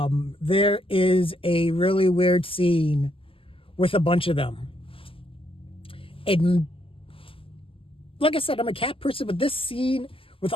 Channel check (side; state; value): right; late; 0.26 ms